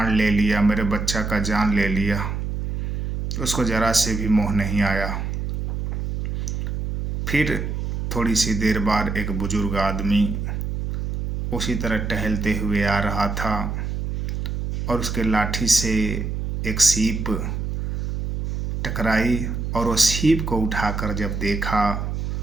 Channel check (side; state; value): right; noise; hum, 3 dB below the sound